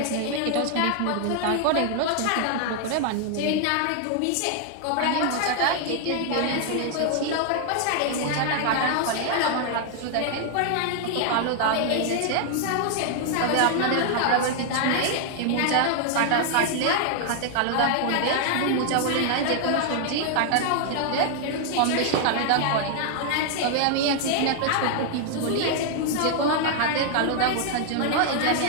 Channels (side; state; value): both; different; correlation 0.00